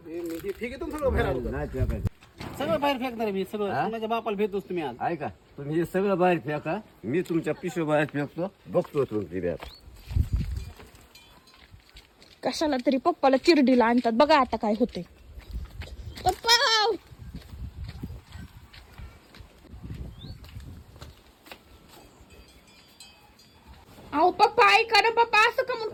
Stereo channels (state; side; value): identical; both; correlation 1.00